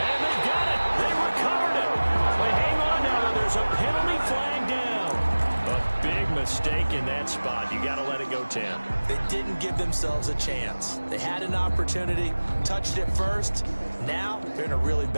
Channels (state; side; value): inverted; both; correlation -1.00